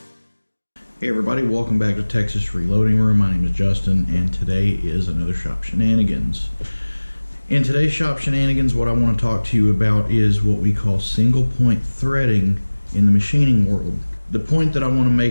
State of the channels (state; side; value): inverted; both; correlation -1.00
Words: everybody, welcome back to Texas Reloading Room. My name is Justin and today is another Shop Shenanigans. In today's Shop Shenanigans, what I want to talk to you about is what we call single point threading in the machining world. The point that I want to